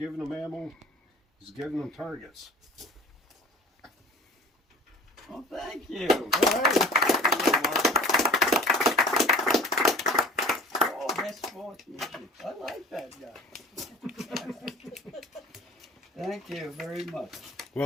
them ammo, he's giving them targets. Oh, thank you. All right. Oh, best sportsmanship. I like that guy. Thank you very much.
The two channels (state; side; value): normal; both; correlation 0.42